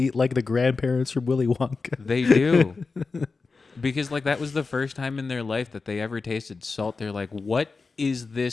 like the grandparents from Willy Wonka. They do. Because like that was the first time in their life that they ever tasted salt. They're like, "What is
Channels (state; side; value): quieter; right; 4.3 dB